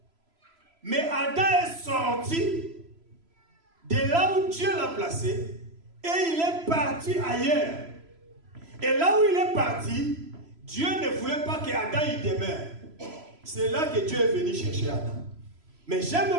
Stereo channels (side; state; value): left; late; 3.0 ms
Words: Mais Adam est sorti de là où Dieu l'a placé et il est parti ailleurs. Et là où il est parti, Dieu ne voulait pas que Adam y demeure. C'est là que Dieu est venu chercher Adam. Mais